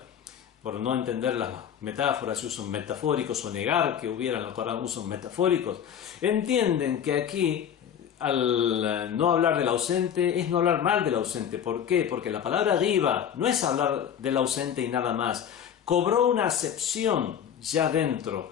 por no entender las metáforas y usos metafóricos, o negar que hubiera en el Corán usos metafóricos, entienden que aquí, al no hablar del ausente, es no hablar mal del ausente. ¿Por qué? Porque la palabra ghiba no es hablar del ausente y nada más. Cobró una acepción ya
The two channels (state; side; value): quieter; right; 8.8 dB